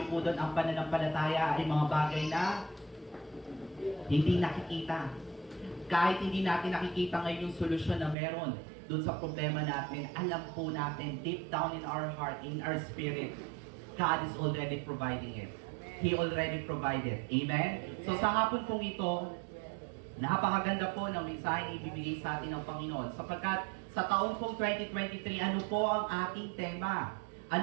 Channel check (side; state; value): left; drops out; at 8.2 s